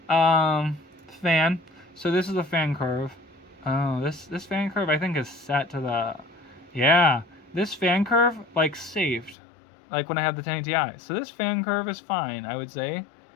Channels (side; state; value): right; drops out; at 9.3 s